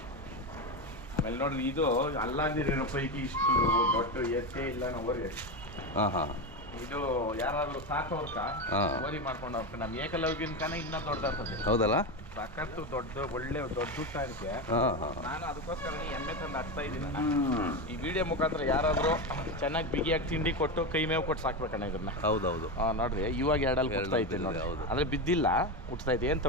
ಆಮೇಲೆ ನೋಡ್ರಿ ಇದು ಅಲ್ಲಾಂದಿರೋ ಪೈಕಿ ಇಷ್ಟು ದೊಡ್ಡ ಎತ್ತೇ ಇಲ್ಲ ನಾವು. ಹಾಂ ಹಾಂ. ಇದು ಯಾರಾದ್ರೂ ಸಾಕೋರ್ಕ ಓರಿ ಮಾಡ್ಕೊಂಡು ಹೋಗ್ತಾರೆ. ನಮ್ಮ ಏಕಲವ್ಯನ್ಕನ ಇನ್ನೂ ದೊಡ್ಡದಾಗ್ತದೆ. ಹೌದಲ್ಲ? ಸಖತ್ತು ಒಳ್ಳೆ ದೊಡ್ಡ ಊಟಕ್ಕೆ. ನಾನು ಅದಕ್ಕೋಸ್ಕರ ಎಮ್ಮೆ ತಂದು ಹಾಕ್ತಾ ಇದ್ದೀನಿ. ಈ ವಿಡಿಯೋ ಮುಖಾಂತರ ಯಾರಾದರೂ ಚೆನ್ನಾಗಿ ಬಿಗಿಯಾಗಿ ತಿಂಡಿ ಕೊಟ್ಟು ಕೈ ಮೇವು ಕೊಟ್ಟು ಸಾಕ್ಬೇಕಣ್ಣ ಇದನ್ನ. ಹೌದೌದು. ನೋಡ್ರಿ ಇವಾಗ ಎರಡಲ್ಲಿ ಕೊಡ್ತಾ ಐತೆ ನೋಡಿ. ಹೌದು. ಅಂದ್ರೆ ಬಿದ್ದಿಲ್ಲ, ಹುಟ್ತಾ ಐತೆ, ಏನು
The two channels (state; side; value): normal; both; correlation 0.16